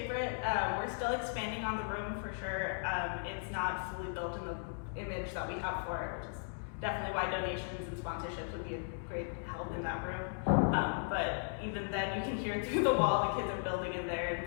We're still expanding on the room for sure. It's not fully built in the image that we have for it, which is definitely why donations and sponsorships would be a great help in that room. But even then, you can hear through the wall the kids are building in there and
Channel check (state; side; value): silent; right; digital silence